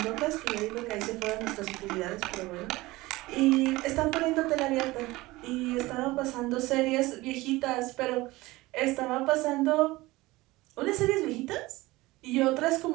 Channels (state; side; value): quieter; left; 20.0 dB